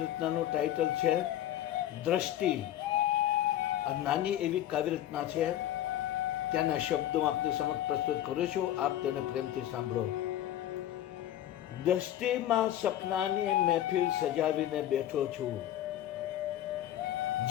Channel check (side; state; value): right; quieter; 12.3 dB